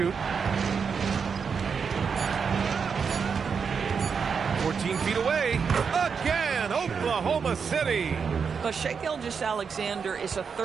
14 feet away. Again, Oklahoma City. But Shai Gilgeous-Alexander is a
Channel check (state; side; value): quieter; left; 6.1 dB